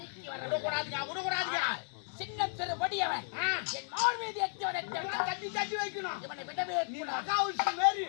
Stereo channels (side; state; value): right; silent; 55 dB below the other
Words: வர விடக்கூடாதுங்க, விடக்கூடாதுங்க. சின்ன சிறு வடியவன் என் மார் மீது எத்தியவனை தட்டி தட்டி வைக்கணும். இவனை விடவே நீ கூடாது. மகாவுஷி மாரி